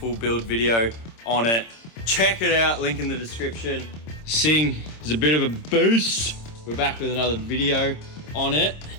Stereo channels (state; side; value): late; right; 26 ms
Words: build video on it, check it out, link in the description. Sing is a bit of a boost. We're back with another video on it.